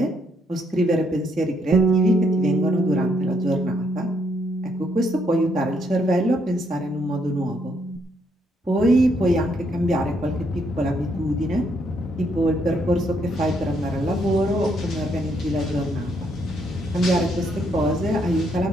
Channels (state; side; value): normal; both; correlation 0.73